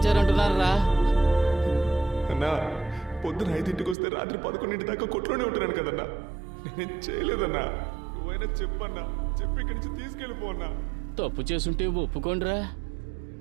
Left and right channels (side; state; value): left; drops out; at 4.0 s